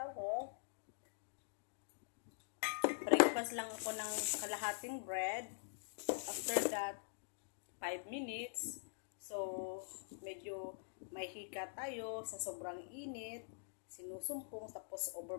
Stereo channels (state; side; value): silent; right; digital silence